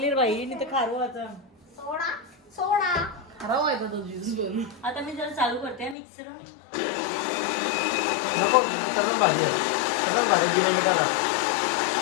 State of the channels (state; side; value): drops out; right; at 6.0 s